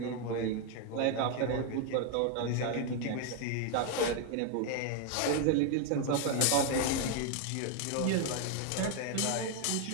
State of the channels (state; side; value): different; both; correlation 0.01